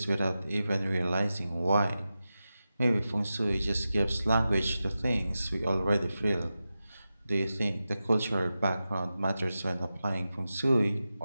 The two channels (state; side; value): inverted; both; correlation -0.92